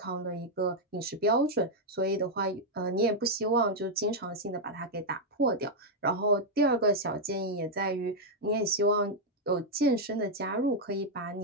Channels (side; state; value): both; normal; correlation -0.01